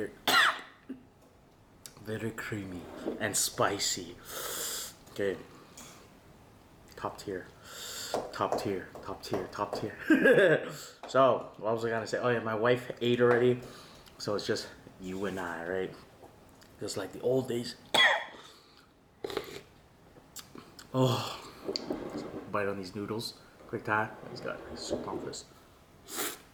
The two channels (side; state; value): both; identical; correlation 1.00